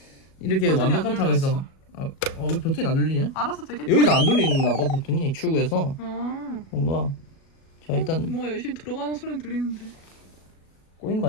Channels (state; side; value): late; right; 37 ms